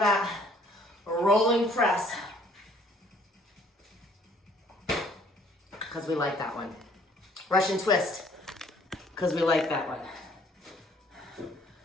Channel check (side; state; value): both; normal; correlation 0.59